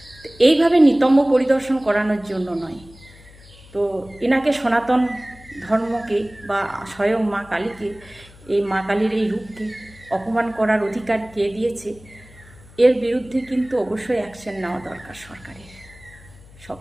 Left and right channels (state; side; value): noise; left; hum, 23 dB below the sound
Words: তো এইভাবে নিতম্ব পরিদর্শন করানোর জন্য নয়। তো এনাকে সনাতন ধর্মকে বা স্বয়ং মা কালীকে, এই মা কালীর এই রূপকে অপমান করার অধিকার কে দিয়েছে? এর বিরুদ্ধে কিন্তু অবশ্যই অ্যাকশন নেওয়া দরকার সরকারের।